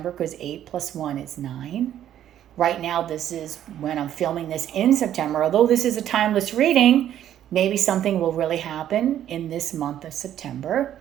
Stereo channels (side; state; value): left; quieter; 11.1 dB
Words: because 8 plus 1 is 9. Right now, this is when I'm filming this in September. Although this is a timeless reading, maybe something will really happen in this month of September.